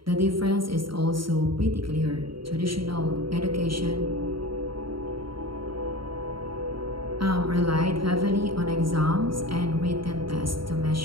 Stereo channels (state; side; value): late; left; 0.74 ms